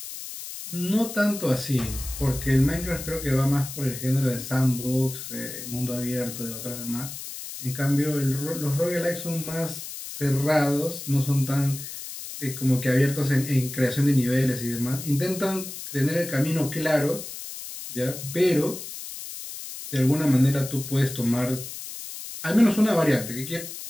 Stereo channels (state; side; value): noise; left; hiss, 10 dB below the sound